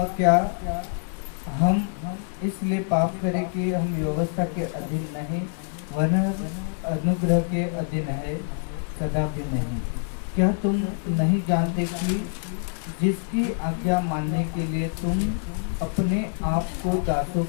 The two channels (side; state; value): right; silent; digital silence